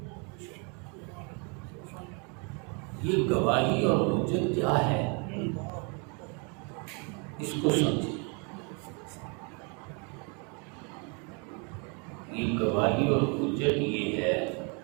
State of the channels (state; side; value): quieter; left; 34.6 dB